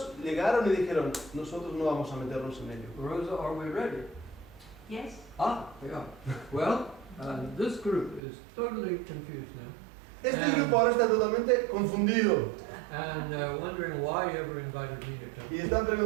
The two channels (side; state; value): left; drops out; at 8.2 s